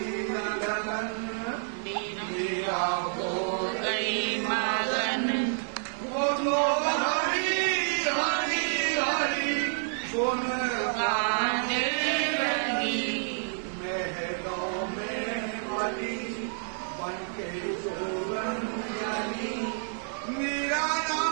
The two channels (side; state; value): left; silent; digital silence